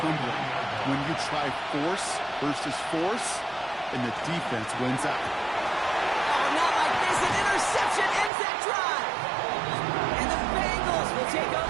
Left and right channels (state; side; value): drops out; left; at 8.3 s